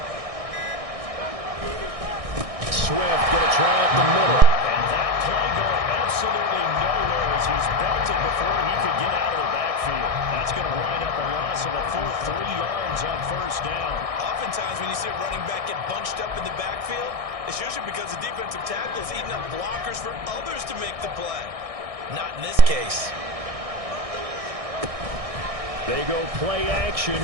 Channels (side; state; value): left; late; 1.6 ms